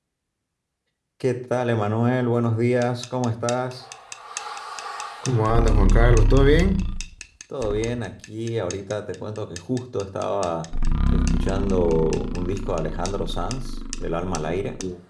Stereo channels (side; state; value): both; identical; correlation 1.00